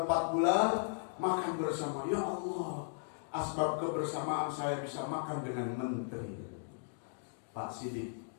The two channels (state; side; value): silent; right; digital silence